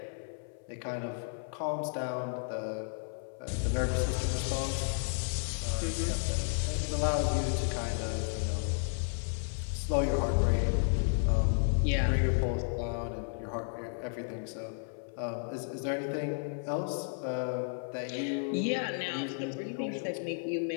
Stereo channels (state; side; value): silent; right; 56 dB below the other